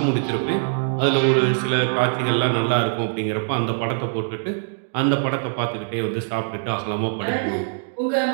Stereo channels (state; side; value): silent; left; digital silence